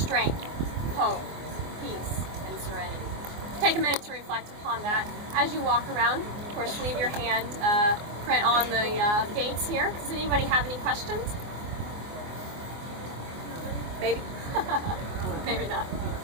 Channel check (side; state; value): left; late; 24 ms